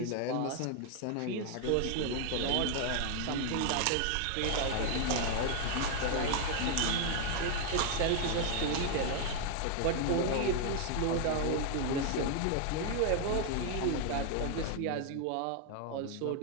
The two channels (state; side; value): different; both; correlation 0.00